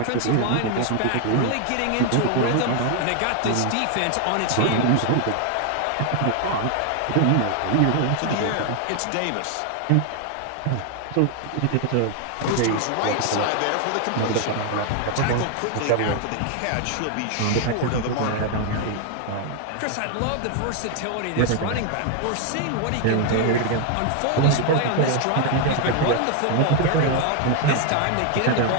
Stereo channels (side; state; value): both; different; correlation 0.01